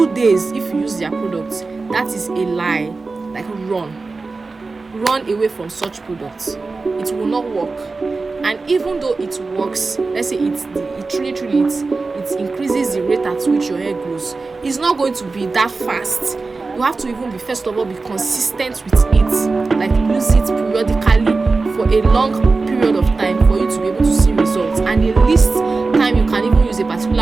days if you use their products. That is a lie. Like, run away from such products. It will not work. And even though it works, let's say it truly it increases the rate at which your hair grows, it's not going to be that fast. You have to even first of all be consistent with it, like use it periodically for a long period of time for you to be able to see results. And the least time you can even use a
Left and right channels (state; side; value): quieter; left; 3.9 dB